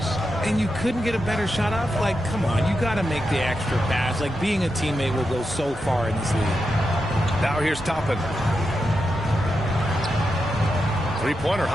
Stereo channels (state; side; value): normal; both; correlation 0.87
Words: And you couldn't get a better shot off? Like, come on, you got to make the extra pass. Like, being a teammate will go so far in this league. Now here's Toppin. Three-pointer,